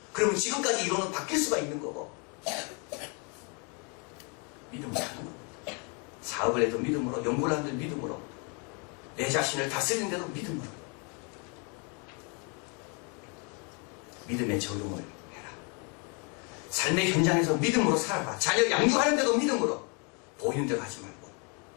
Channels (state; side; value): quieter; right; 34.6 dB